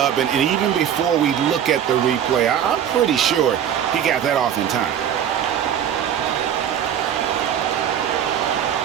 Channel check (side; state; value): left; quieter; 9.4 dB